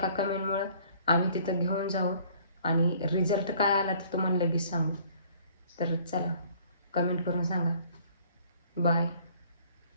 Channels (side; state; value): both; inverted; correlation -0.56